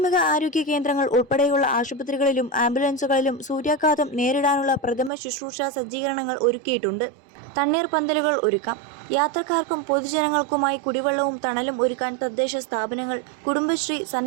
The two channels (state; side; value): drops out; left; at 5.1 s